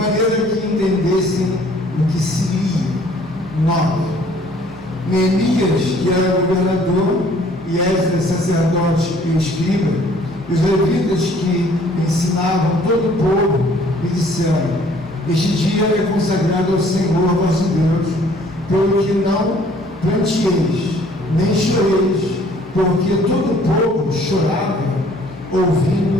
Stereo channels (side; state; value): both; normal; correlation 0.57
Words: que entendessem o que se lia. 9. Neemias, que era governador, e Esdras, sacerdote e escriba, e os levitas que ensinavam todo o povo, me disseram: Este dia é consagrado ao Senhor vosso Deus, pelo que não pranteeis, nem choreis, porque todo o povo chorava,